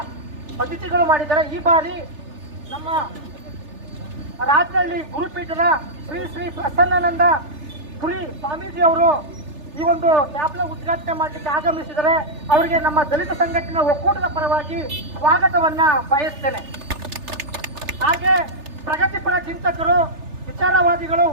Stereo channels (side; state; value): left; late; 3.3 ms